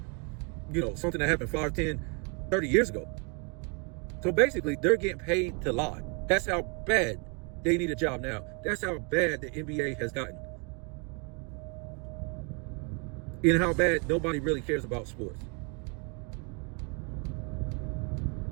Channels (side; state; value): left; quieter; 34.6 dB